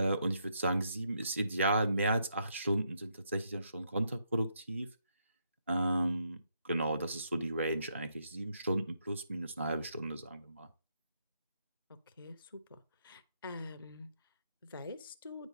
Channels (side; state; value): both; inverted; correlation -0.77